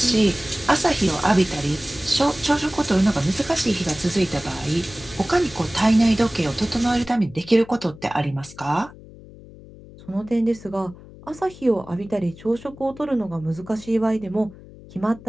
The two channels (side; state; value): left; noise; hum, 19 dB below the sound